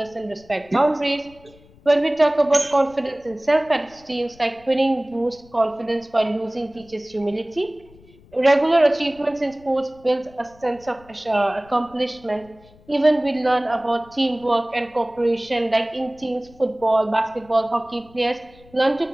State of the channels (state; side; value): noise; left; rumble, 26 dB below the sound